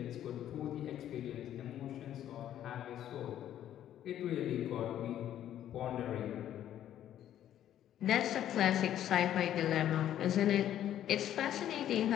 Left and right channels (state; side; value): quieter; right; 11.3 dB